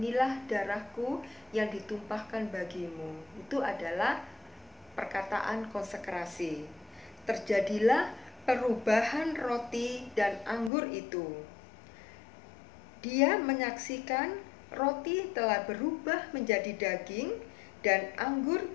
darahku yang ditumpahkan bagimu." Itu adalah perkataan konsekrasi. Terjadilah perubahan roti dan anggur itu. Dia menyaksikan roti telah berubah menjadi daging dan anggur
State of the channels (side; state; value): right; drops out; at 10.7 s